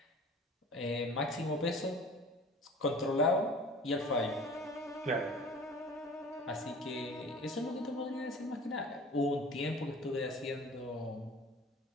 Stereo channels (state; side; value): normal; both; correlation 0.44